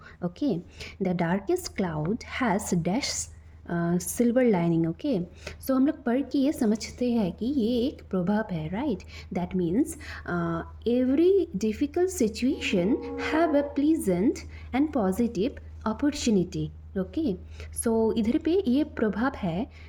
Okay, the darkest cloud has dash silver lining. Okay, so हम लोग पढ़ के ये समझते हैं कि ये एक प्रभाव है, right. That means every difficult situation have a pleasant and positive opportunity. Okay, so इधर पे ये प्रभाव है,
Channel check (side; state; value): both; identical; correlation 1.00